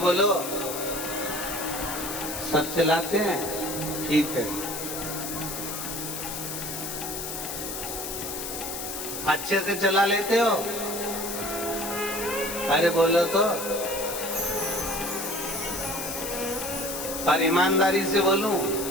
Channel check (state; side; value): noise; left; hiss, 6 dB below the sound